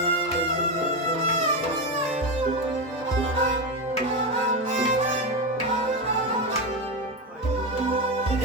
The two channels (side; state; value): both; normal; correlation 0.13